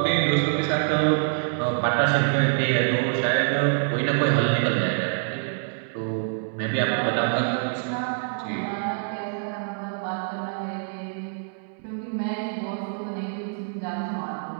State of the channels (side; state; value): left; silent; 61 dB below the other